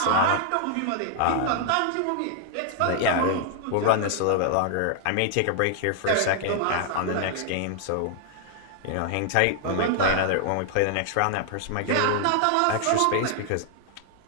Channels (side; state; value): both; different; correlation 0.00